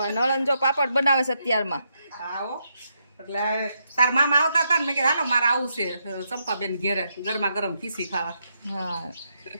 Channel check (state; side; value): inverted; both; correlation -0.80